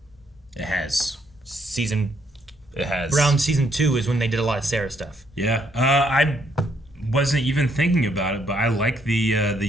It has. It has. Around season 2 is when they did a lot of Sarah stuff. Yeah. I wasn't even thinking about it, but I like the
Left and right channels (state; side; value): normal; both; correlation 0.71